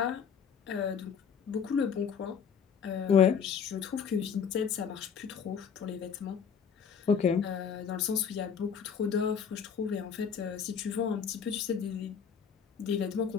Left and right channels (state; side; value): quieter; right; 7.0 dB